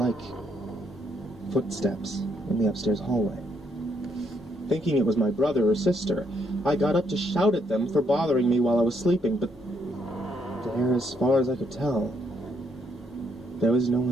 footsteps in the upstairs hallway. Thinking it was my brother or sister, I got up to shout at them for bothering me while I was sleeping, but there, as far as I could tell, there was no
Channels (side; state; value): both; normal; correlation 0.74